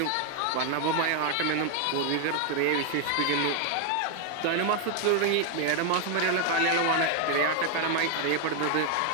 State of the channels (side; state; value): both; different; correlation 0.00